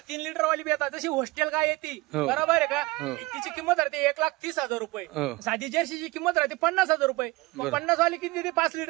3 लिटर वाली बी येतात. जशी हॉस्टेल काय येते बरोबर आहे का, तिची किंमत राहते 1,30,000 रुपये. साधी जर्सीची किंमत राहते 50,000 रुपये. 50 वाली किती देते? 5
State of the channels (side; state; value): left; quieter; 22.4 dB